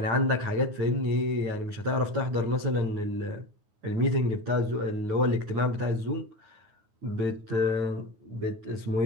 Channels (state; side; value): late; left; 9.5 ms